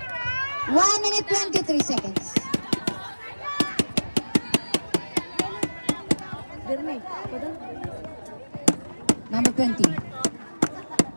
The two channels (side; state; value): both; inverted; correlation -1.00